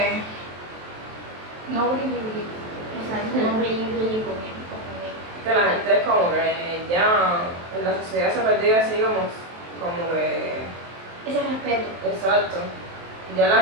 No brilli. exacto, no brille conmigo. Que la gente es como que ya en la sociedad se ha perdido así como que... Ese respeto. Exacto. Ya la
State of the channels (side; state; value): left; late; 23 ms